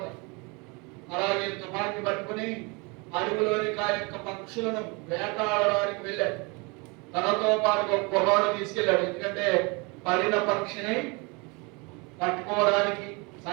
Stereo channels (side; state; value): left; quieter; 28.9 dB